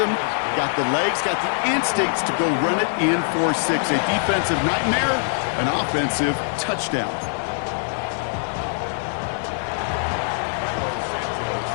got the legs, got the instincts to go run it in for 6. A defensive nightmare, an offensive touchdown.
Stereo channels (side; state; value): right; silent; digital silence